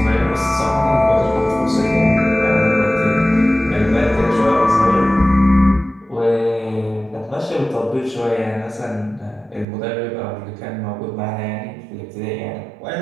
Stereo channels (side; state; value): left; drops out; at 9.7 s